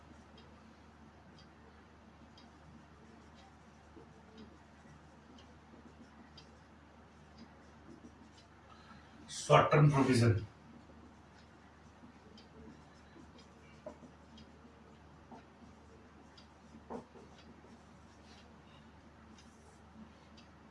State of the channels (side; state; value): both; identical; correlation 1.00